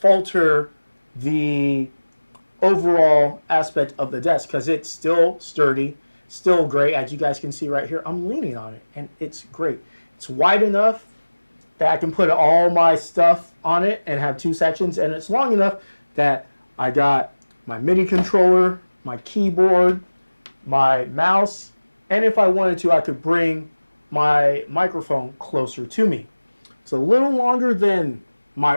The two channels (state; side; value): inverted; both; correlation -1.00